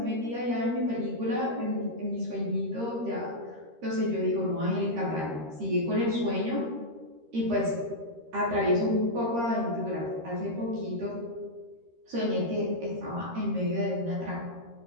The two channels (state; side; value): late; left; 13 ms